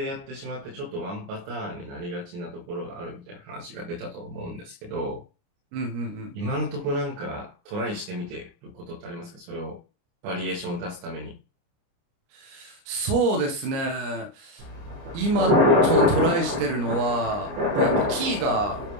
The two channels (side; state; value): left; late; 29 ms